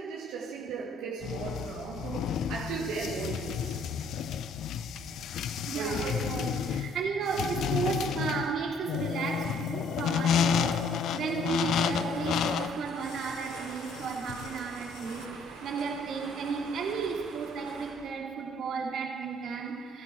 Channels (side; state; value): both; normal; correlation 0.61